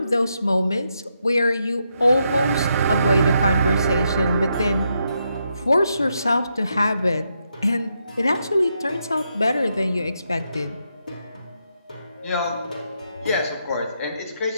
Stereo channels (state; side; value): inverted; both; correlation -0.81